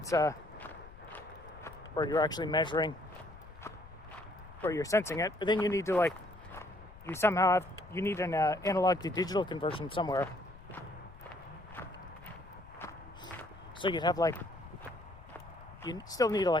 where you're actually measuring, where you're sensing it, but then you need to you need an analog to digital conversion somewhere. So you'd have you still need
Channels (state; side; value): noise; left; rumble, 19 dB below the sound